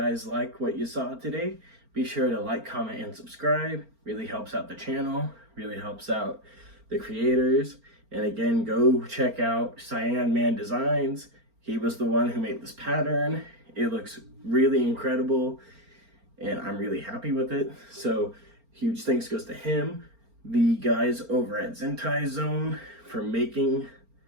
like what you saw today, be sure to like, comment, and subscribe. Really helps out the channel, really helps out the creators. And again, go check out Cyanmandesigns. He was the one who made this pattern. It looks really incredible, and I'm really happy with it. So huge thanks goes to him, the guys over at ZentaiZone for making,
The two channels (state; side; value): late; left; 4.4 ms